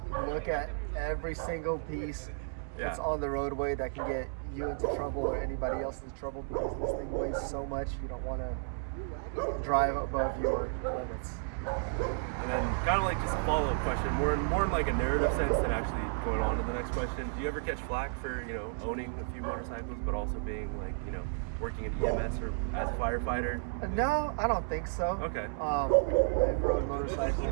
Look at every single piece that's on the roadway that can get you into trouble or anybody else into trouble, because this thing weighs so much. You don't want to drive above your limits. And then kind of like just a follow-up question, more in like a narrative sense than actually going on to the next question. Do you ever catch flack for, owning a few motorcycles, but also being like, working in EMS or as a firefighter? No, I don't think so. Okay. I've rode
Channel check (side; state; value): left; silent; 56 dB below the other